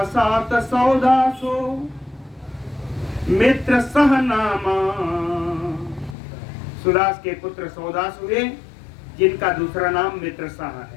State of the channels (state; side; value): drops out; right; at 6.2 s